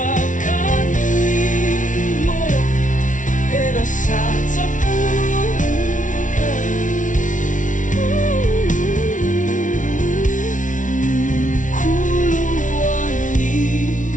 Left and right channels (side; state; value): right; late; 0.37 ms